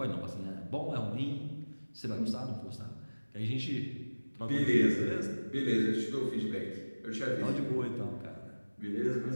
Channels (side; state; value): both; inverted; correlation -1.00